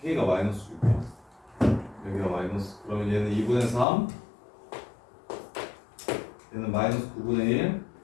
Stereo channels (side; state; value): right; drops out; at 3.9 s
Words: K가 마이너스 6이야. 여기가 마이너스. 그러면 얘는 2분의 3 얘는 마이너스 9분의 1